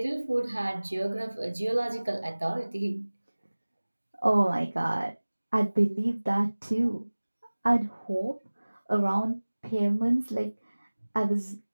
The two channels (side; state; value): both; inverted; correlation -1.00